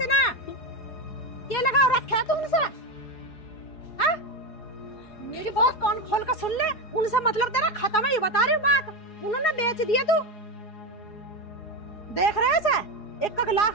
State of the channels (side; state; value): right; late; 4.8 ms